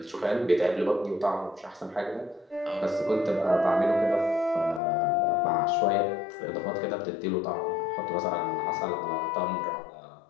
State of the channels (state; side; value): drops out; right; at 4.8 s